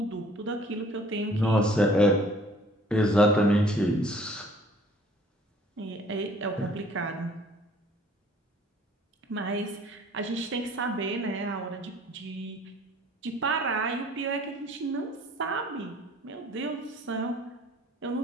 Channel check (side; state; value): both; normal; correlation 0.54